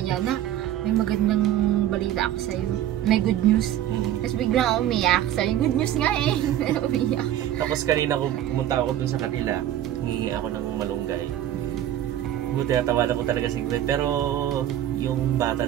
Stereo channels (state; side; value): quieter; left; 12.0 dB